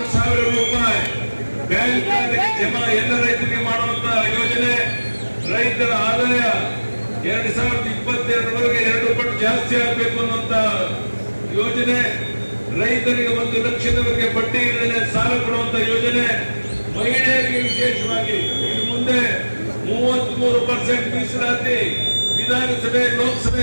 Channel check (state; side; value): inverted; both; correlation -1.00